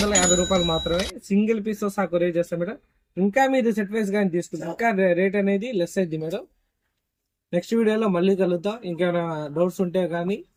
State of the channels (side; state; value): both; identical; correlation 1.00